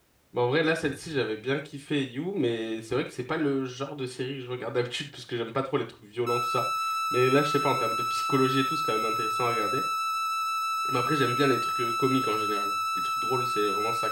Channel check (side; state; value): both; identical; correlation 1.00